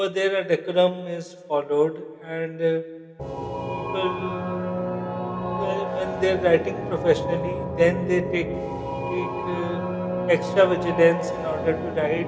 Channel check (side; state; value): both; identical; correlation 1.00